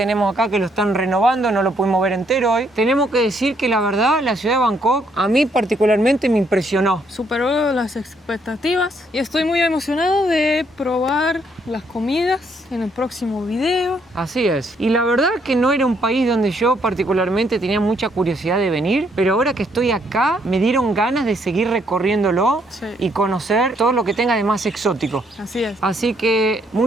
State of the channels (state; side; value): normal; both; correlation 0.71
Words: acá, que lo están renovando, no lo pudimos ver entero hoy. Tenemos que decir que la verdad, la ciudad de Bangkok a mí particularmente me impresionó. Superó las expectativas y estoy muy emocionado de probar las comidas en el próximo video. Así es. Y la verdad que no era un país donde yo particularmente tenía mucha curiosidad de venir, pero ahora que estoy acá me dieron ganas de seguir recorriéndolo Sí. y conocer todo lo que tenga de más exótico. Así es. Así que